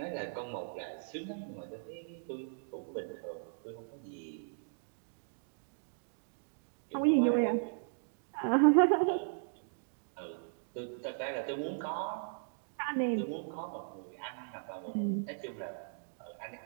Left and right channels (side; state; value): left; silent; digital silence